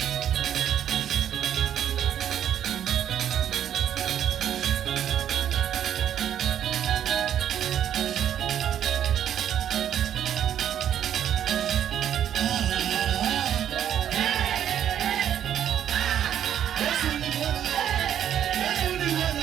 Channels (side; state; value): left; quieter; 10.1 dB